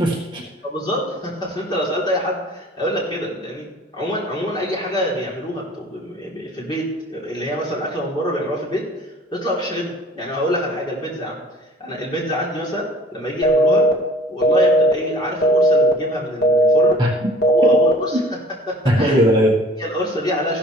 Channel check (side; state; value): both; normal; correlation 0.48